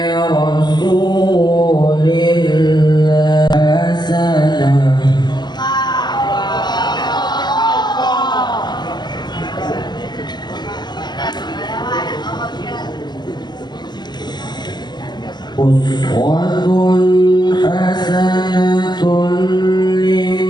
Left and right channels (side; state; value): right; late; 0.21 ms